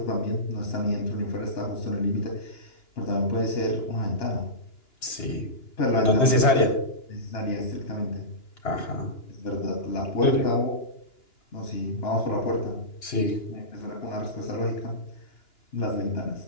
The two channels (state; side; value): late; right; 2.9 ms